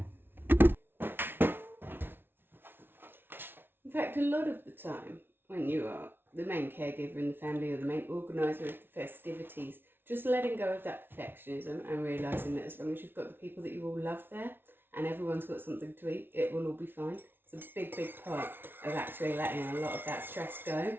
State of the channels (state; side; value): late; left; 0.11 ms